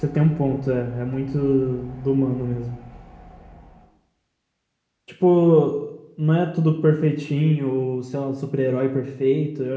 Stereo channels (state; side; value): identical; both; correlation 1.00